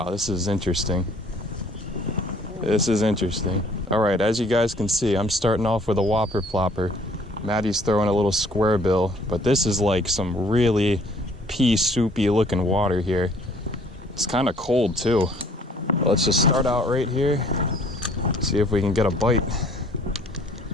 this is interesting. This is interesting. All right, as you guys can see, I'm starting off with a whopper plopper. Matty's throwing a little square bill, but this is like some really pea soupy looking water here. It's kind of cold too. Let's just start out right here. See if we can get a bite.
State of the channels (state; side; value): normal; both; correlation 0.58